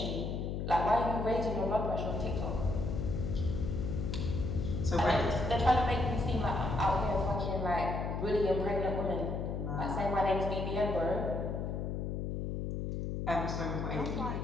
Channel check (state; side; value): noise; left; hum, 2 dB below the sound